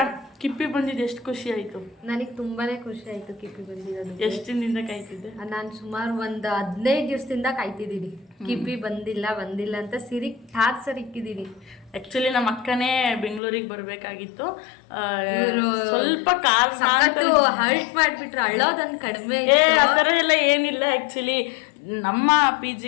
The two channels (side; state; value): right; drops out; at 13.4 s